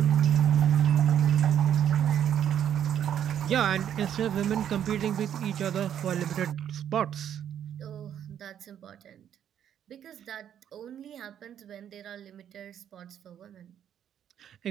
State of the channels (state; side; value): quieter; left; 9.7 dB